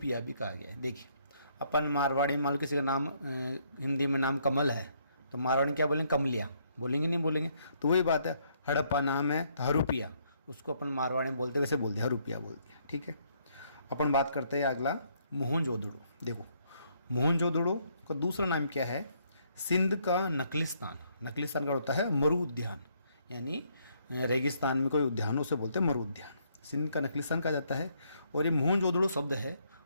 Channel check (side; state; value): both; inverted; correlation -0.70